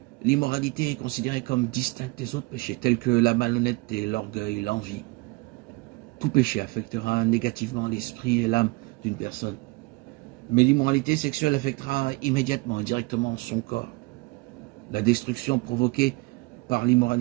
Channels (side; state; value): left; quieter; 24.6 dB